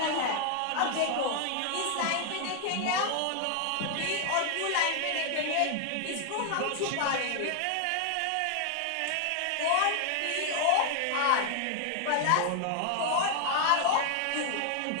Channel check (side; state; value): both; different; correlation 0.00